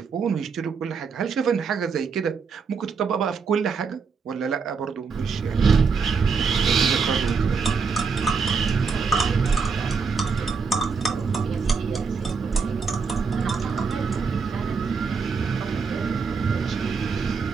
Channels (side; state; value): left; quieter; 5.3 dB